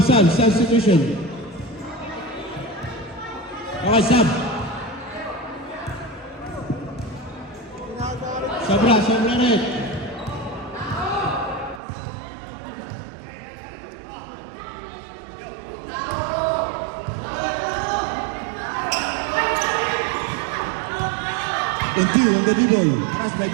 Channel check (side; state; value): left; drops out; at 11.8 s